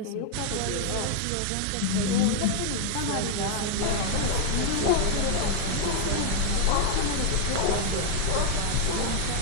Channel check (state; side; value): different; both; correlation 0.00